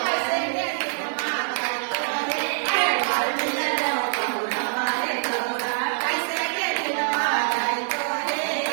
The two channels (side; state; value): left; silent; digital silence